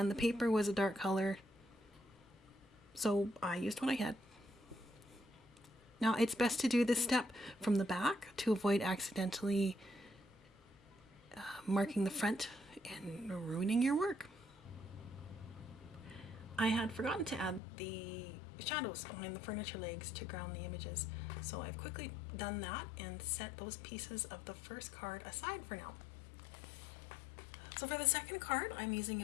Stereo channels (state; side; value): drops out; right; at 17.6 s